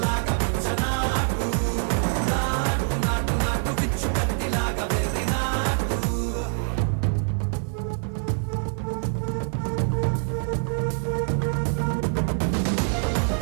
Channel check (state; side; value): silent; left; 62 dB below the other